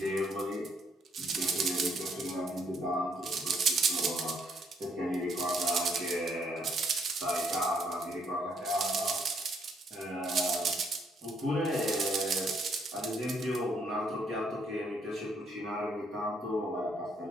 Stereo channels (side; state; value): both; normal; correlation 0.69